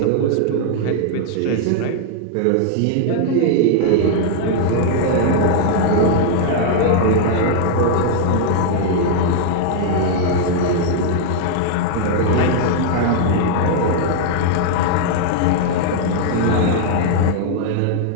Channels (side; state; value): both; different; correlation -0.01